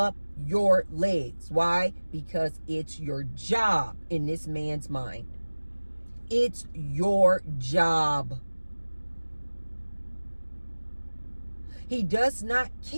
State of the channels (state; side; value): inverted; both; correlation -1.00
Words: your legs. Why? Because it's your job in this man's mind. It's your job. He does not